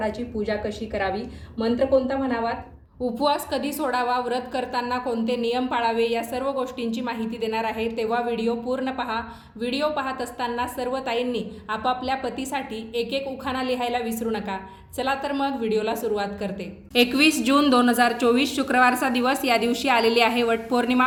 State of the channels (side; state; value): both; identical; correlation 1.00